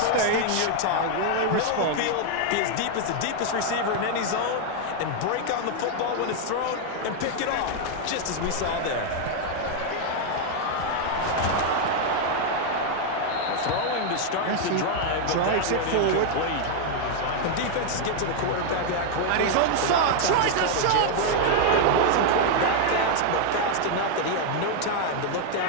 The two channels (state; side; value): different; both; correlation 0.00